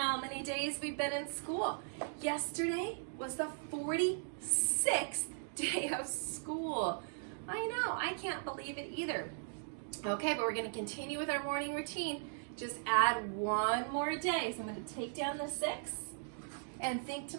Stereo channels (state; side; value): silent; left; digital silence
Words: many days we've been in school. Yesterday was the 46th day of school. I know, I can't believe it either. Okay, but we're gonna continue with our morning routine. Just add one more day. So I'm gonna take down the 6 and think to